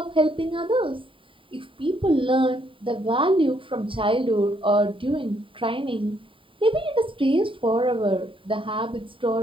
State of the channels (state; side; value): late; left; 0.25 ms